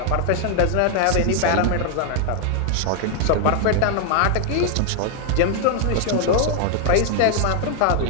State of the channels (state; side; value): different; both; correlation 0.00